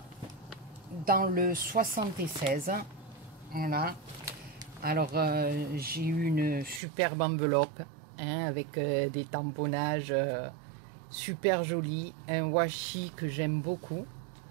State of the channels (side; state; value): left; drops out; at 6.8 s